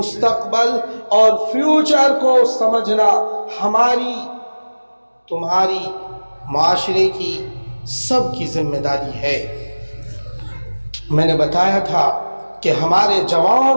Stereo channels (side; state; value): both; inverted; correlation -1.00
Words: اور فیوچر کو سمجھنا ہماری، تمہاری، معاشرے کی، سب کی ذمہ داری ہے۔ میں نے بتایا تھا کہ ہمارے